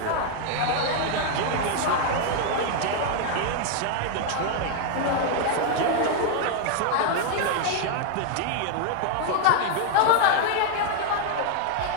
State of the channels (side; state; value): both; different; correlation 0.00